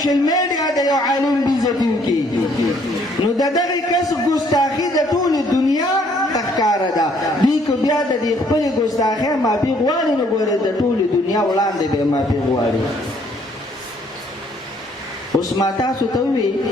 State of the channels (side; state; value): both; normal; correlation 0.64